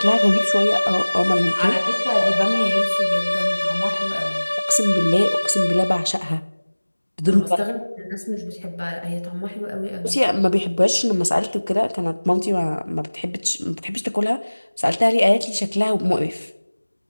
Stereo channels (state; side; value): inverted; both; correlation -1.00